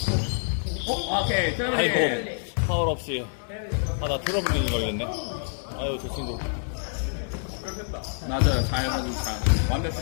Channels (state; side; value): silent; right; digital silence